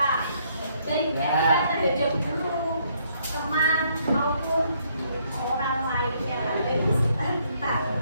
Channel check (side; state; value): both; inverted; correlation -0.69